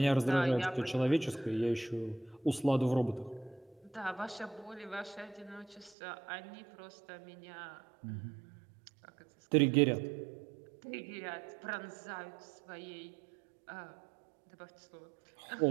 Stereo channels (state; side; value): drops out; left; at 6.0 s